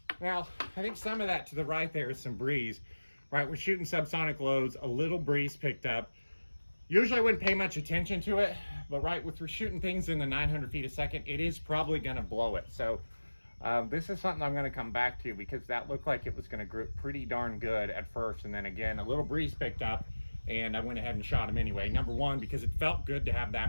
Now, I think some of that to the right there is some breeze, right? We're shooting subsonic loads, a little breeze picked up. Usually I wouldn't pay much attention to it, but right, if we're shooting things in the 900 feet a second, it is probably gonna blow it. So this is something I'm gonna come back to, because that looked like it was gonna grip pretty darn good at first. And then again, a little breeze picked up, and I went ahead and shot him anyway. Number one, because it felt good to have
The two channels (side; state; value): both; inverted; correlation -1.00